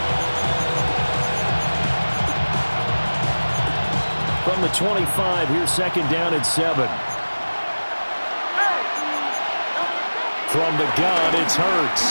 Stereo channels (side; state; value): both; inverted; correlation -1.00